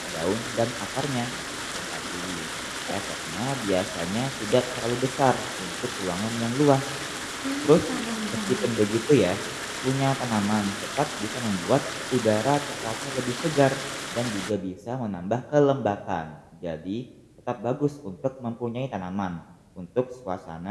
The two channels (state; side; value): identical; both; correlation 1.00